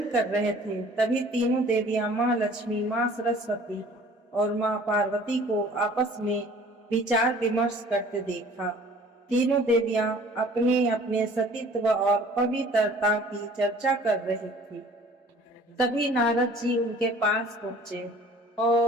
कर रहे थे, तभी तीनों देवियां माँ लक्ष्मी, माँ सरस्वती और माँ पार्वती को आपस में विचार विमर्श करते देखा। तीनों देवियां अपने अपने सतीत्व और पवित्रता की चर्चा कर रही थी। तभी नारद जी उनके पास पहुंचे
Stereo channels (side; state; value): both; normal; correlation 0.50